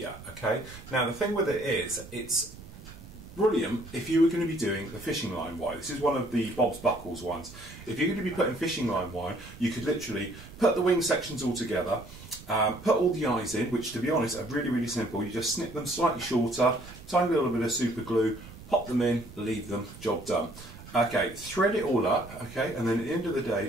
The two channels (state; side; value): noise; right; rumble, 17 dB below the sound